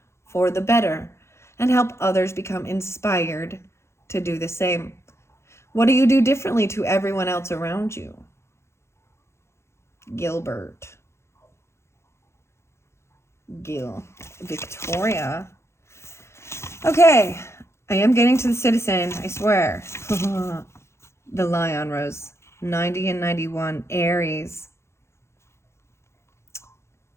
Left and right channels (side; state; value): right; late; 0.13 ms